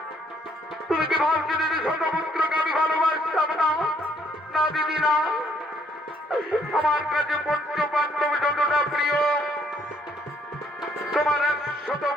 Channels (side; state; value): both; normal; correlation 0.67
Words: না দিদি না, আমার কাছে পঞ্চ পাণ্ডব যতটা প্রিয়, তোমার 100